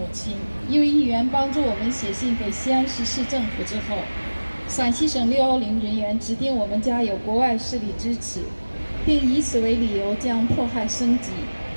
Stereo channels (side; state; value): both; inverted; correlation -1.00